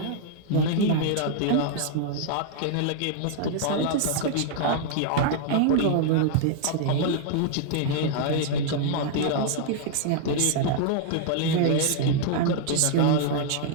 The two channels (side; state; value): both; different; correlation -0.01